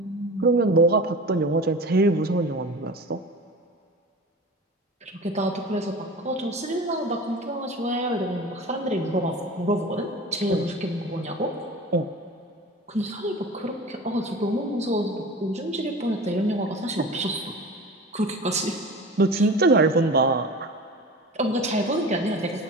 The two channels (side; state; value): both; normal; correlation 0.35